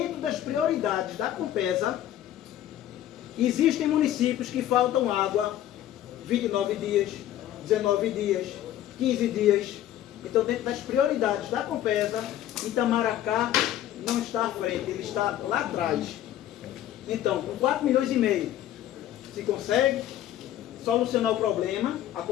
das prioridades da Compesa, existem municípios que faltam água 29 dias, 19 dias, 15 dias. Então, dentro das prioridades da Compesa, Itamaracá não está à frente, ele está lá atrás. Então, com 4,5 milhões, se consegue solucionar o problema, a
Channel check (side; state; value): right; quieter; 12.3 dB